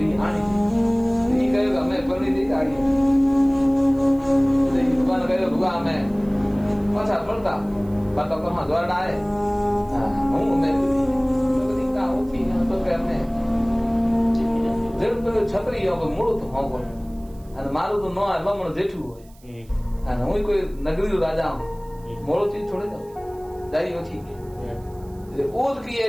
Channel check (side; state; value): right; noise; hiss, 29 dB below the sound